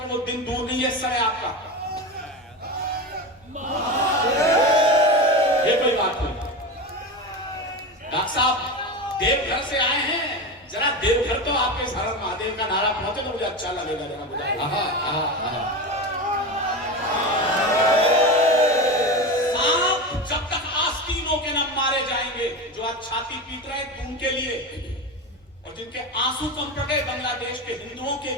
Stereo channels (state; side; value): normal; both; correlation 0.22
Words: वो दिन दूर नहीं है, सर है आपका। ये कोई बात नहीं। डॉक्टर साहब देवघर से आए हैं, जरा देवघर तो आपके हर महादेव का नारा पहुंचे तो मुझे अच्छा लगेगा। जरा बुझाइए। सांप जब तक आस्तीनों के न मारे जाएंगे, जो आज छाती पीट रहे हैं उनके लिए, और जिनके आंसू कम पड़ गए बांग्लादेश के हिंदुओं के